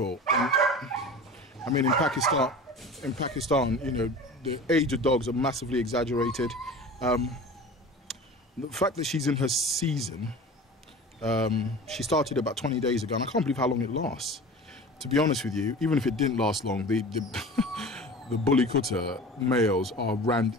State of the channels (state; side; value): normal; both; correlation 0.37